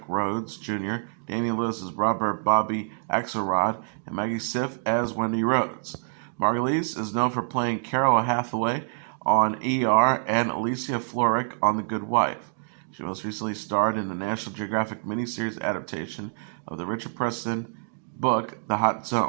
Rhodes Jr., Damian Lewis as Robert Bobby Axelrod, and Maggie Siff as Wendy Rhodes. Margulies is known for playing Carol Hathaway on ER and Alicia Florrick on The Good Wife. She most recently starred in the National Geographic miniseries adaptation of the Richard Preston book The Hot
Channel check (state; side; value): silent; left; digital silence